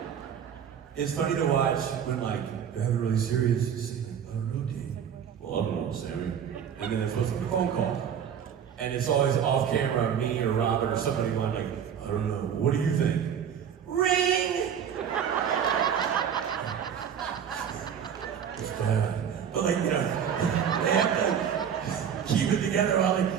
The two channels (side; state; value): left; quieter; 8.2 dB